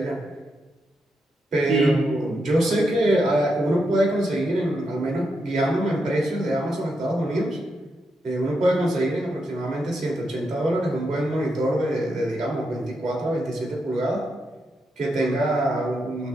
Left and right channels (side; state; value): both; normal; correlation 0.83